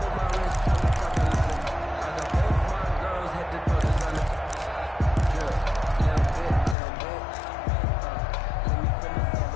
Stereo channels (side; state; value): right; drops out; at 6.8 s